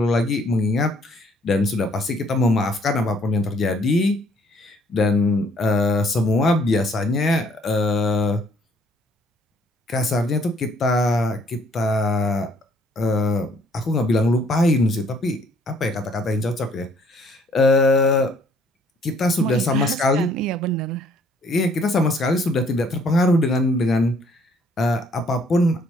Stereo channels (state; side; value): normal; both; correlation 0.63